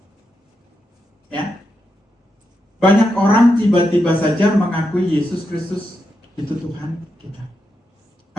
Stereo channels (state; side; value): normal; both; correlation 0.85